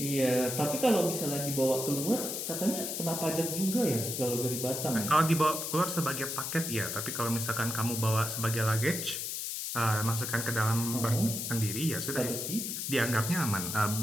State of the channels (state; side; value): noise; left; hiss, 4 dB below the sound